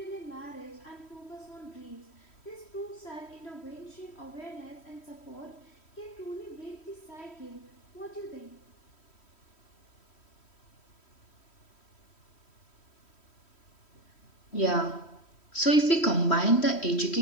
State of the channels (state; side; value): late; right; 3.1 ms